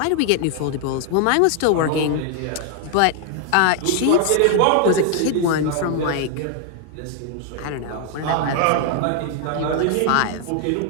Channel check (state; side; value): different; both; correlation 0.00